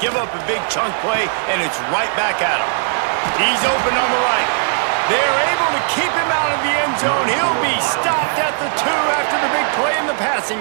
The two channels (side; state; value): left; silent; digital silence